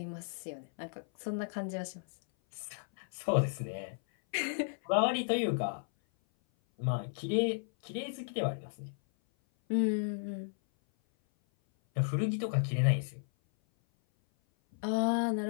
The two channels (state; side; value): silent; right; 55 dB below the other